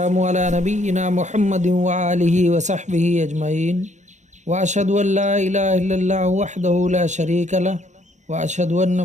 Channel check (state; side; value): late; left; 0.34 ms